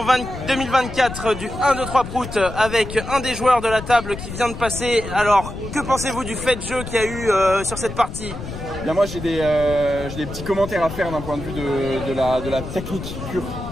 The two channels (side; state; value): left; noise; rumble, 9 dB below the sound